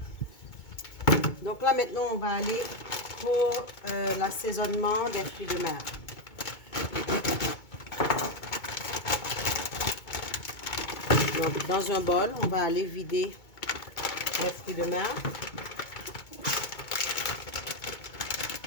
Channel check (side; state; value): right; late; 2.2 ms